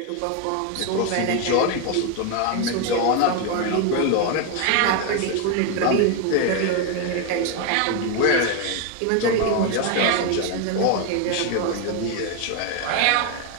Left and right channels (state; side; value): different; both; correlation 0.01